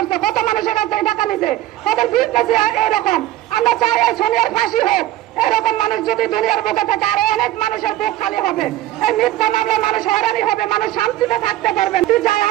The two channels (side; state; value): left; quieter; 14.4 dB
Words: কত মানুষের কাছ থেকে টাকা নিছে ওদের বিজনেস এরকম আমরা চাই এই সোনিয়ার ফাঁসি হোক এরকম মানুষ যদি দুনিয়ার বুকে থাকে আরো অনেক মানুষের বুক খালি হবে এই মিথ্যা মামলায় মানুষ হয়রানি হবে মানুষ শান্তিতে থাকতে পারবেন চাই